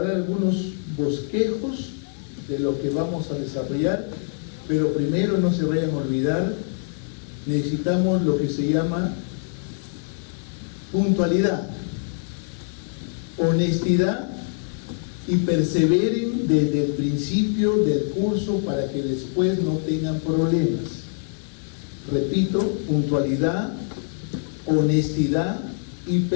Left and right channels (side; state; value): right; silent; digital silence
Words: dar algunos bosquejos de lo que vamos a desarrollar, pero primero no se vayan a olvidar, necesitamos lo que se llama puntualidad, honestidad y perseveren desde el principio del curso para que después no tengan problemas. Repito, puntualidad, honestidad y